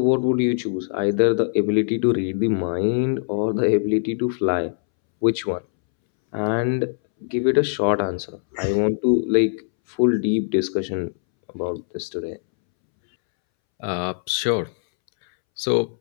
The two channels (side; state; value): right; silent; 64 dB below the other